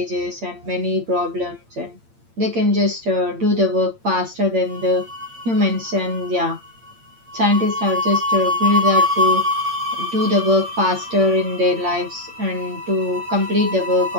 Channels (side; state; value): left; late; 8.7 ms